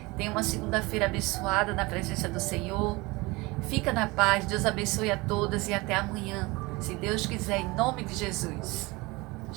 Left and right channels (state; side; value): quieter; left; 23.5 dB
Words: Tenha uma segunda-feira abençoada na presença do Senhor. Fica na paz, Deus abençoe a todas e até amanhã, se Deus quiser, em nome de Jesus.